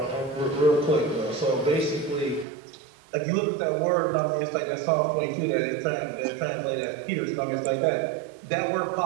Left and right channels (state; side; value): drops out; left; at 2.5 s